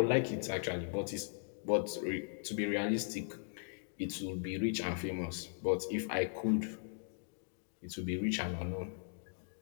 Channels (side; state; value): right; silent; digital silence